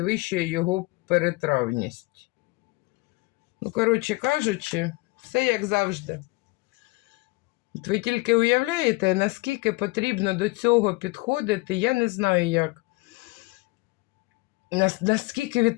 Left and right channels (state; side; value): quieter; right; 23.8 dB